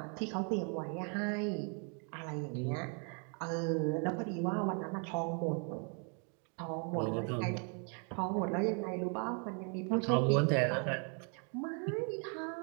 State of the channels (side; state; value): left; quieter; 38.7 dB